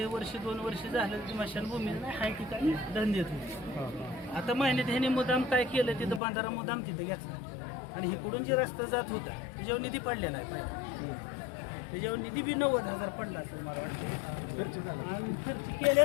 वर्ष 2 वर्ष झालं स्मशानभूमी नाही हाय ठिकाणी दंड देत होती. आता महिन्यात ह्याने मुदाम काय केलं, तिथं बांधारा मुदाम तिथं घेतला आणि इकडून जे रस्ता जात होता त्याच्यावर निधी पडलेला आहे. त्याच्यावर निधी बी 90,000 पडला असेल मला वाटतं, खर्च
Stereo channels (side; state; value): right; drops out; at 6.2 s